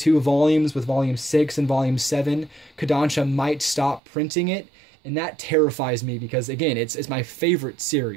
volumes, with Volume 6 and Volume 7, Kodansha might stop printing it, and that terrifies me because, again, it's my favorite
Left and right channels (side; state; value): left; drops out; at 4.0 s